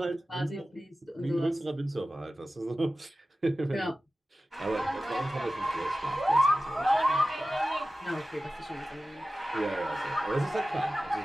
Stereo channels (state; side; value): normal; both; correlation 0.95